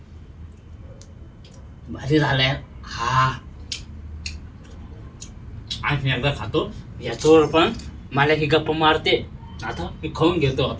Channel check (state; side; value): identical; both; correlation 1.00